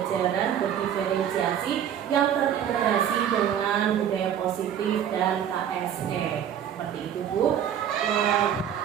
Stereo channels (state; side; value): quieter; left; 9.4 dB